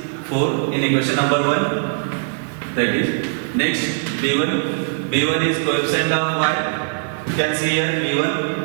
4 in equation number 1. That is next b1 is coefficient of y. You can see here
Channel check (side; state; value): left; silent; digital silence